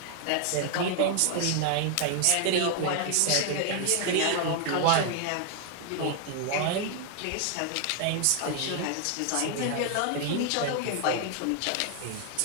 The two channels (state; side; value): different; both; correlation 0.00